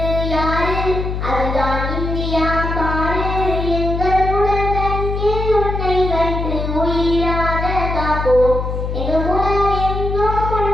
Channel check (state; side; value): noise; left; hum, 3 dB below the sound